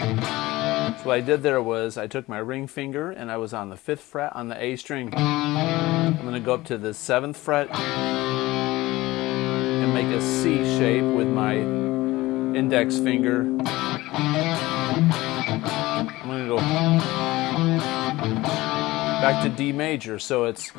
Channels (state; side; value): quieter; right; 18.8 dB